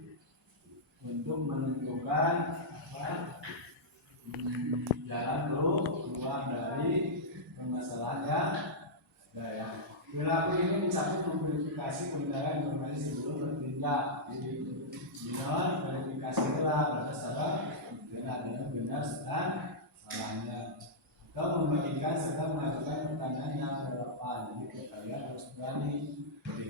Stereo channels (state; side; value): normal; both; correlation -0.09